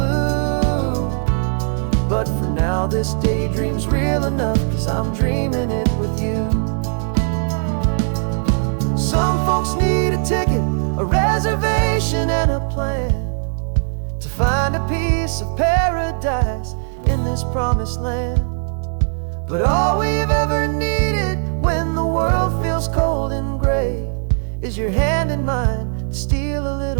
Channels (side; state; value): left; silent; digital silence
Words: But for now this daydream's real enough, 'cause I'm dreaming it with you. Some folks need a ticket, a reservation and a plan to find a piece of paradise in this promised land. is your hand in mine to steal a